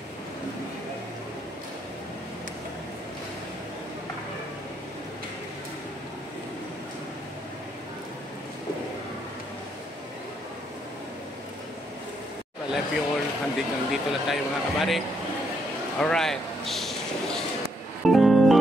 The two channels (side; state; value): both; normal; correlation 0.75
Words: I love you all. Hanggang dito lang tayo mga kabady. Alright.